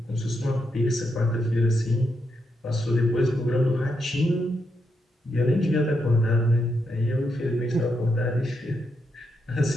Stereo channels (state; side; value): normal; both; correlation 0.81